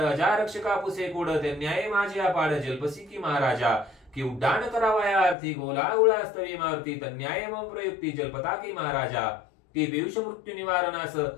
रक्षका पुसे कोड ते न्याय माझे अपाड जल्पसी की महाराजा की उड्डाण करावया अर्थी गोला उळास्तवी मारुती तन्याय मम प्रयुक्ती जलपताकी महाराजा की पियुष मृत्यू निवारणास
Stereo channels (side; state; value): right; drops out; at 5.4 s